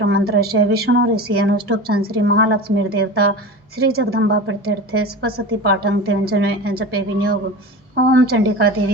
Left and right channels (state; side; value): normal; both; correlation 0.31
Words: विष्णुऋषि अनुष्टुप् श्री महालक्ष्मीर्देवता श्री जगदम्बा प्रत्यर्थे स्पशति पाठं तेन जपे विनियोग। ओम चंडिका